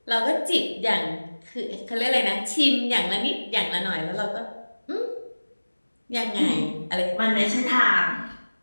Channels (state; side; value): inverted; both; correlation -1.00